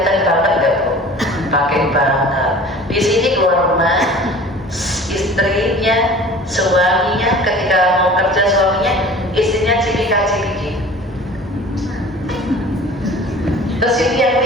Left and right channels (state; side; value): normal; both; correlation 0.43